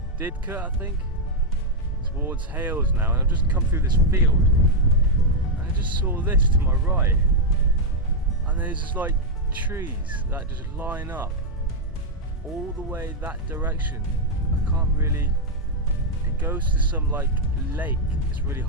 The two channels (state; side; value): normal; both; correlation 0.00